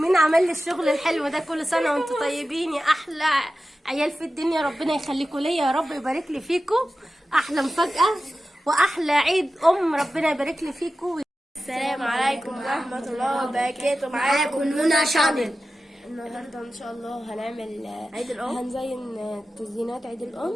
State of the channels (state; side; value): normal; both; correlation 0.94